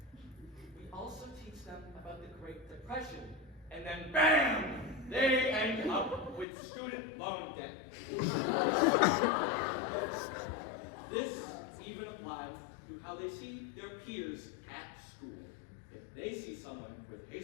We also teach them about the Great Depression, and then BAM! They end up with student loan debt. This even applies to how they see their peers at school. If they see someone with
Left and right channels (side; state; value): right; drops out; at 6.5 s